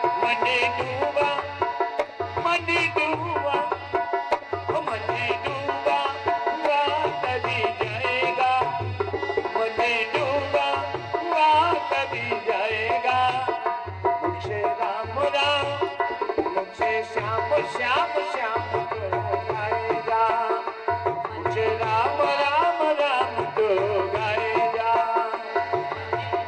मनी डूबा मनी डूबा मनी डूबा हुआ तरी जाएगा, मनी डूबा हुआ तरी जाएगा, मुझसे राम राम मुझसे श्याम श्याम श्याम तो गाएगा, मुझे राम राम राम तो गाएगा।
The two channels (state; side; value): identical; both; correlation 1.00